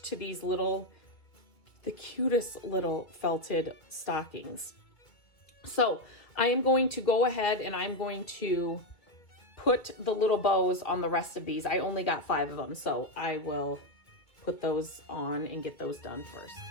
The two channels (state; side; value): late; right; 2.3 ms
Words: to these little, the cutest little felted stockings. So I am going to go ahead and I'm going to put the little bows on the rest of these. I only got 5 of them, so I will put those on and get those done first.